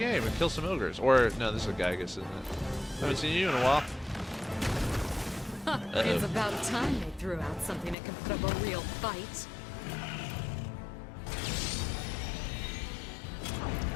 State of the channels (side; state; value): right; drops out; at 8.0 s